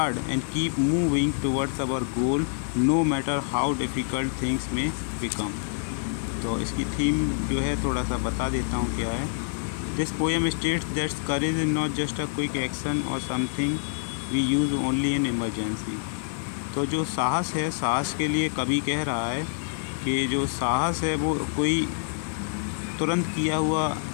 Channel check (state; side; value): silent; right; 60 dB below the other